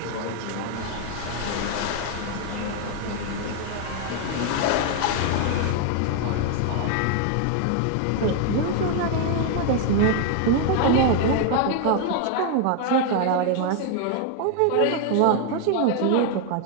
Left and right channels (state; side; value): different; both; correlation 0.00